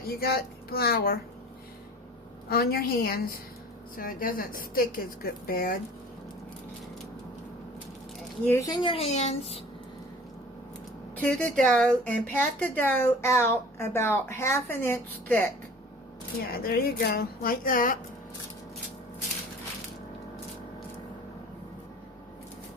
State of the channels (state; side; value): normal; both; correlation 0.44